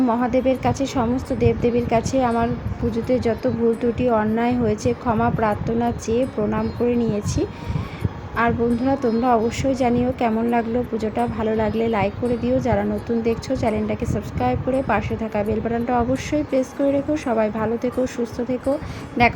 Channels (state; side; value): identical; both; correlation 1.00